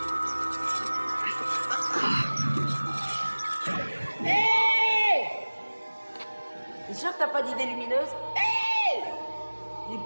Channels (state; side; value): inverted; both; correlation -1.00